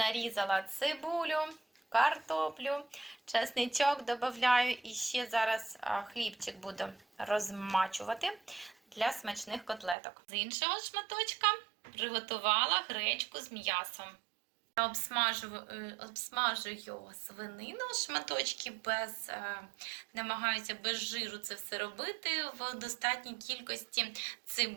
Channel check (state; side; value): drops out; left; at 10.0 s